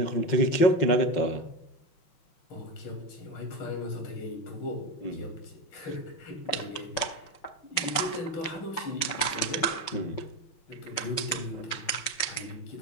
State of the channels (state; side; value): late; right; 5.4 ms